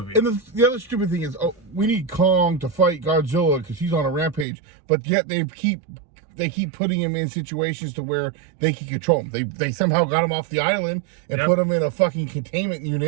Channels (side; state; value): left; drops out; at 4.5 s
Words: And the other stupid thing is, we need Kong to fight Godzilla because he's on a rampage, but yet they keep putting him in situations to where they can control him. They somehow got him off the island and put him in a fucking containment